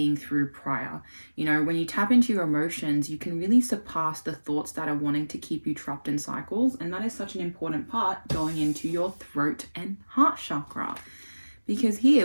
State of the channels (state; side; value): inverted; both; correlation -1.00